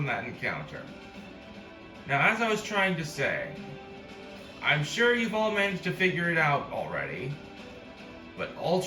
that encounter. Now, as I was trying to say, I'm sure you've all managed to figure it out already, but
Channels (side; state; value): both; identical; correlation 1.00